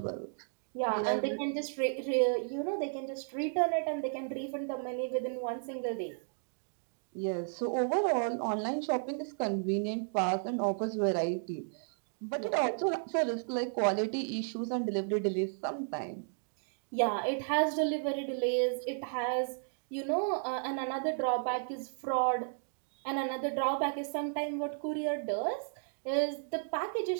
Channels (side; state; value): left; silent; digital silence